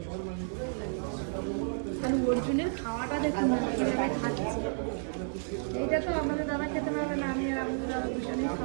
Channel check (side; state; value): left; silent; digital silence